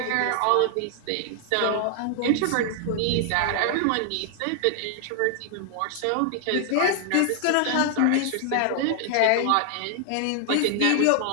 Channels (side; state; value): both; different; correlation 0.00